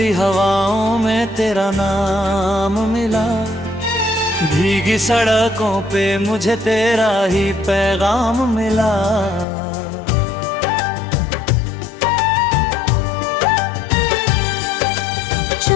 हवाओं में तेरा नाम मिला। भीगी सड़कों पे मुझे तेरा ही पैगाम मिला।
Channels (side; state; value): right; drops out; at 9.5 s